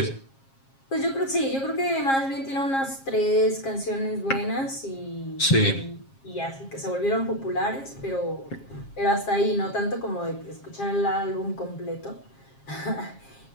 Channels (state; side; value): late; right; 7.4 ms